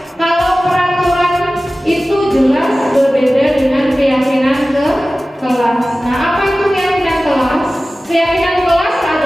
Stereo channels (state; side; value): normal; both; correlation 0.96